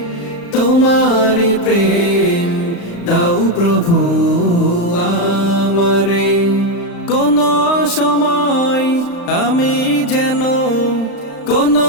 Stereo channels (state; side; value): late; right; 35 ms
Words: তোমারি প্রেম দাও প্রভু আমারে। কোন সময়